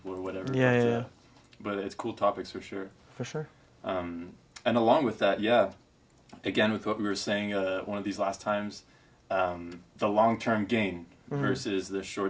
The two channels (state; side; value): identical; both; correlation 1.00